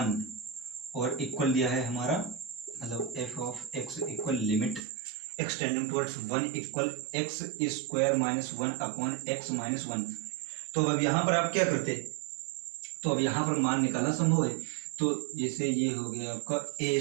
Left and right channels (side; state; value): left; drops out; at 4.8 s